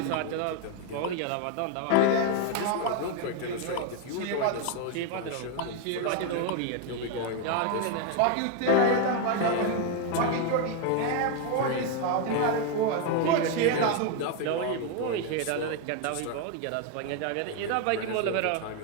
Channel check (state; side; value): different; both; correlation 0.01